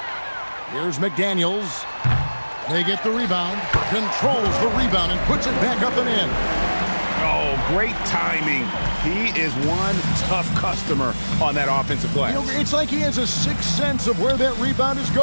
Here's McDaniels. They get the rebound, controls the rebound, and puts it back up and in. Oh, great timing. He is one tough customer on that offensive glass. You know, it's like he has a sixth sense of where that rebound is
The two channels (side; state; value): both; inverted; correlation -1.00